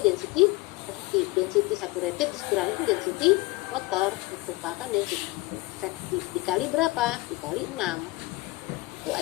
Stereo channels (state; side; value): quieter; right; 22.0 dB